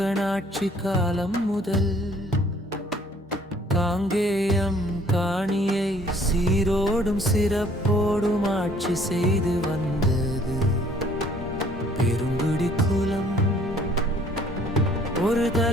காலம் முதல் காங்கேயம் காணியை சீரோடும் சிறப்போடும் ஆட்சி செய்து வந்தது பெருங்குடி குலம். ஒரு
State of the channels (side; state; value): both; normal; correlation 0.59